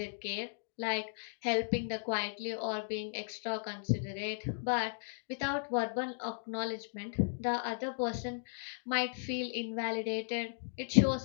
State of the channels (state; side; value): silent; right; digital silence